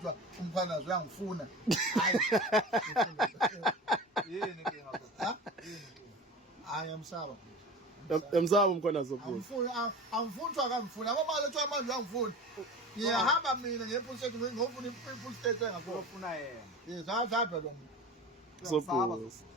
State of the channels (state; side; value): normal; both; correlation 0.34